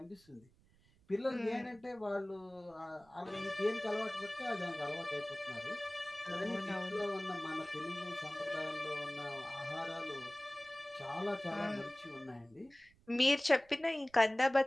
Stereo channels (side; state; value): right; noise; rumble, 30 dB below the sound